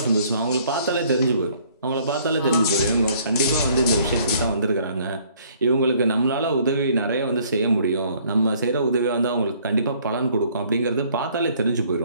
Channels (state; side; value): inverted; both; correlation -0.60